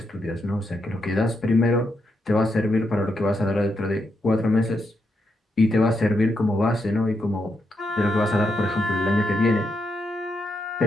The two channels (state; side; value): normal; both; correlation 0.82